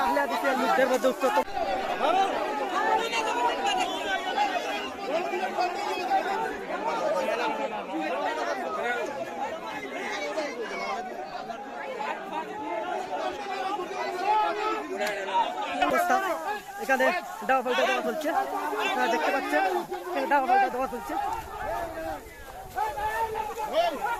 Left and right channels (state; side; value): identical; both; correlation 1.00